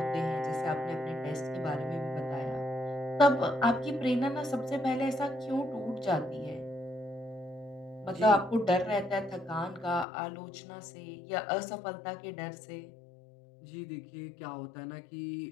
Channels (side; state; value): right; drops out; at 10.1 s